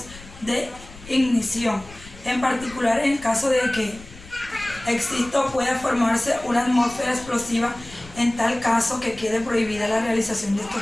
de ignición, en particular en el caso de que exista o pueda formarse una atmósfera explosiva. En tal caso que quede prohibida la realización de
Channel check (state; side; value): noise; left; rumble, 19 dB below the sound